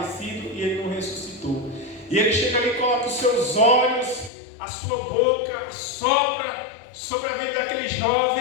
e ele não ressuscitou. E ele chega ali e coloca os seus olhos, a sua boca, sopra sobre a vida daquele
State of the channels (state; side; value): drops out; right; at 4.3 s